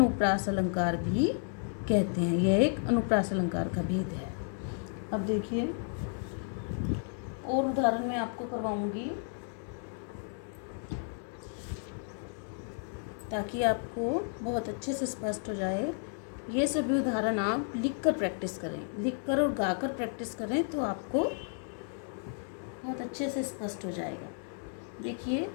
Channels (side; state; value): right; silent; 56 dB below the other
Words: अलंकार भी कहते हैं। यह एक अनुप्रास अलंकार का भेद है। अब देखिए, और उदाहरण मैं आपको करवाऊंगी ताकि आपको बहुत अच्छे से स्पष्ट हो जाए। ये सभी उदाहरण आप लिखकर प्रैक्टिस करें, लिखकर और गाकर प्रैक्टिस करें तो आपको बहुत अच्छे से स्पष्ट हो जाएगा। देखिए,